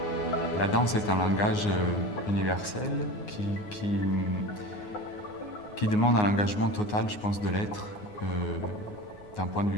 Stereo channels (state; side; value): late; right; 9.6 ms